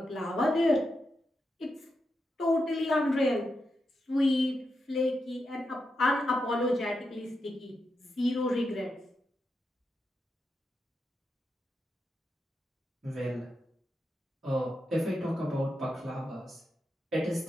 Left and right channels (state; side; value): normal; both; correlation 0.86